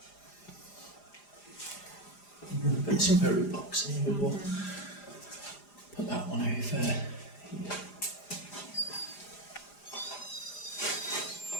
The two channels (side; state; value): right; late; 4.9 ms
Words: Put some very box in the middle. Put that one over.